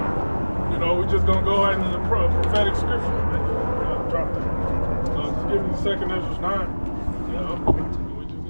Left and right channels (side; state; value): both; inverted; correlation -1.00